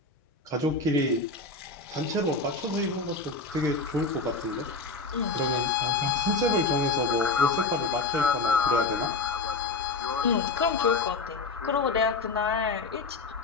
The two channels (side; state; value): right; quieter; 3.7 dB